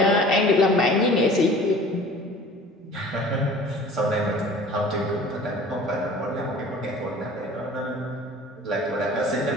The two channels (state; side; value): normal; both; correlation 0.46